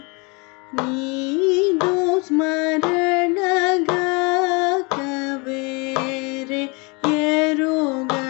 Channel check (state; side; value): quieter; right; 29.9 dB